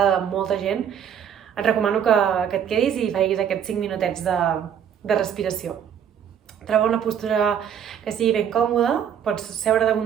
de molta gent, et recomano que et quedis i facis aquests 5 minutets de respiració. Troba una postura que sigui ben còmoda, pots seure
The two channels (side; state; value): left; quieter; 8.7 dB